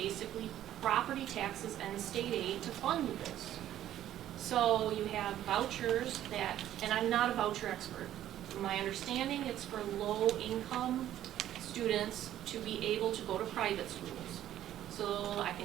property taxes and state aid to fund this. So you have vouchers that, and I'm not a voucher expert. From my understanding, it's for low income students to be able to go to private schools. So I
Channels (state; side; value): quieter; left; 12.2 dB